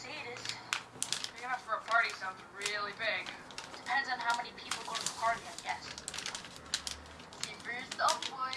it is. Big enough for a party sounds really big. Depends on how many people go to the party, I guess. See for yourself,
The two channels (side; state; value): both; identical; correlation 1.00